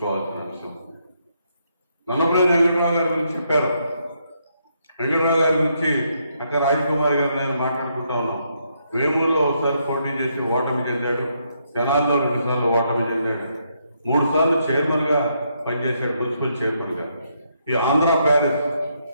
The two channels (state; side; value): inverted; both; correlation -0.76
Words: అంశం. నన్నపనేని వెంకట్రావు గారి గురించి చెప్పారు. వెంకట్రావు గారి గురించి అక్క రాజకుమారి గారు నేను మాట్లాడుకుంటా ఉన్నాం. వేమూరులో ఒకసారి పోటీ చేసి ఓటమి చెందాడు. తెనాల్లో 2 సార్లు ఓటమి చెందాడు. 3 సార్లు చైర్మన్ గా పనిచేశాడు, మున్సిపల్ చైర్మన్ గా. ఈ ఆంధ్ర ప్యారిస్,